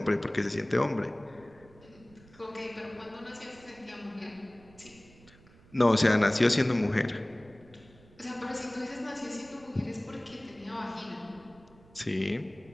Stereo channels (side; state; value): right; noise; rumble, 25 dB below the sound